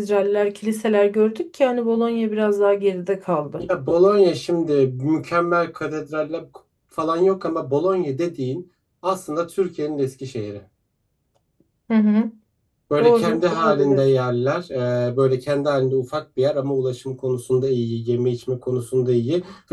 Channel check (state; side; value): identical; both; correlation 1.00